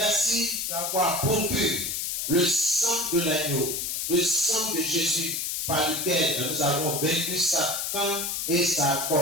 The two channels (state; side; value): noise; left; hiss, 2 dB below the sound